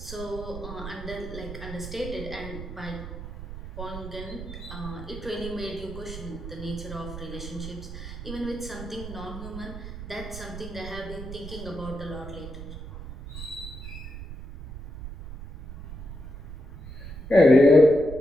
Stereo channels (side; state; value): right; noise; rumble, 10 dB below the sound